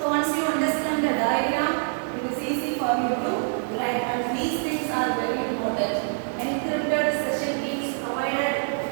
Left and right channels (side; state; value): left; silent; 61 dB below the other